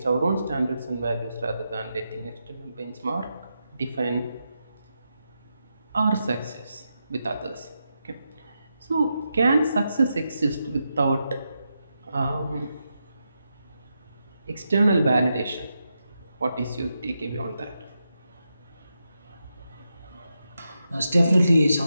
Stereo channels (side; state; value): both; inverted; correlation -0.86